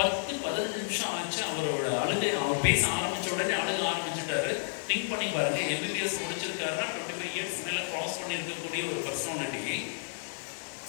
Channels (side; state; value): right; silent; 57 dB below the other